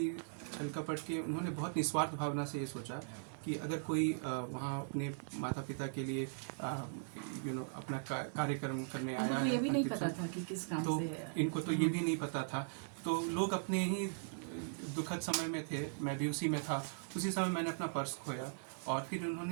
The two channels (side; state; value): left; silent; digital silence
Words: छल-कपट के, उन्होंने बहुत निस्वार्थ भावना से ये सोचा कि अगर कोई वहाँ अपने माता पिता के लिए अपना कार्यक्रम करने आया है, ये भी नहीं पता था कि किस काम तो से, इनको तो ये भी नहीं पता था। तो लोग अपने ही दुखद समय में थे, मैं भी उसी में था। उसी समय मैंने अपना पर्स खोया, और फिर